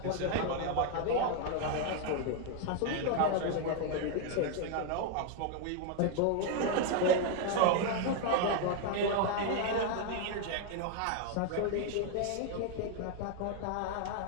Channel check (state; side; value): different; both; correlation 0.00